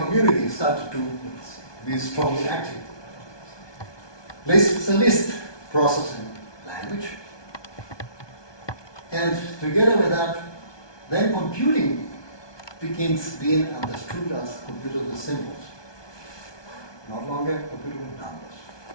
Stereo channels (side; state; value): right; late; 1.2 ms